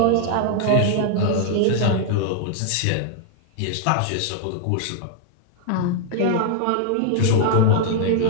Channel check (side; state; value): both; different; correlation 0.00